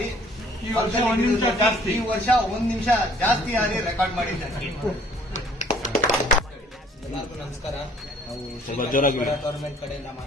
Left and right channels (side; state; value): both; normal; correlation 0.58